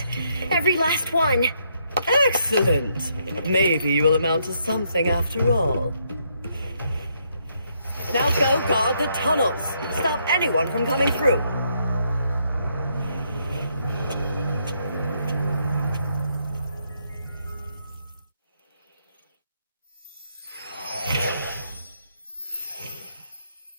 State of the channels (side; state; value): both; inverted; correlation -0.74